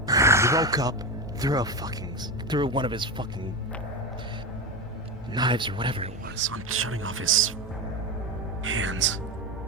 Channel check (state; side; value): normal; both; correlation 0.18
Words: He woke up, threw one of his fucking knives or whatever it was. I'm shutting off his hands,